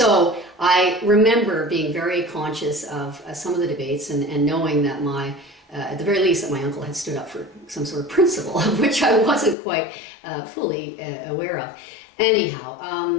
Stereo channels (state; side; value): drops out; right; at 9.6 s